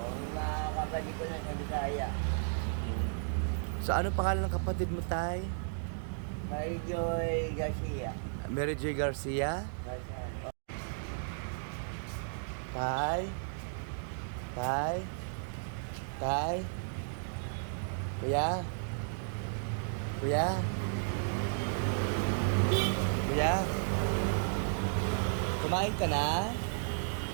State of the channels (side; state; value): left; silent; digital silence